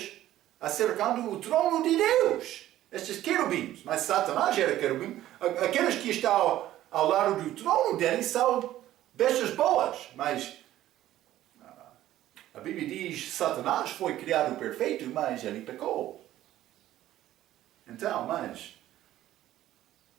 acercando o trono de Deus. Estes querubins, mas Satanás era querubim. Aqueles que estão ao lado do trono dele são bestas boas, mas a Bíblia diz que Satanás foi criado perfeito, mas ele pecou. Então, mas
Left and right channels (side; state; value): left; quieter; 13.7 dB